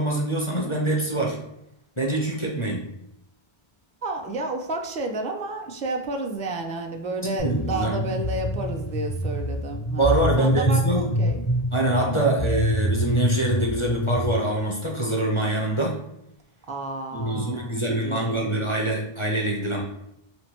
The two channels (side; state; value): right; late; 1.4 ms